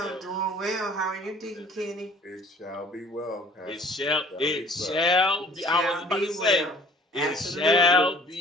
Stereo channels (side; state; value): both; normal; correlation 0.52